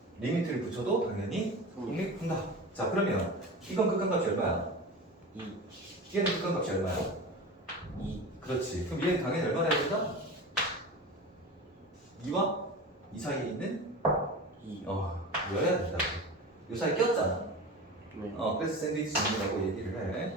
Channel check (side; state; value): both; normal; correlation 0.31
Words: 리미트를 붙여도 당연히 성립한다. 자, 그러면 이건 극한값이 얼마야? 2. 얘는 극한값이 얼마야? 2. 그렇지. 그럼 얘는 당연히 얼마나 해야 된다? 2와 2 사이에 있는 2. 여야 된다고. 요 사이에 꼈잖아. 네. 그래서 샌드위치 정리라고 얘기를 해.